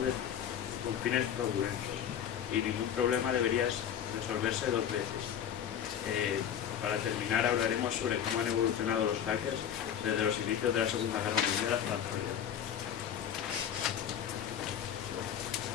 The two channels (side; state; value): right; quieter; 9.2 dB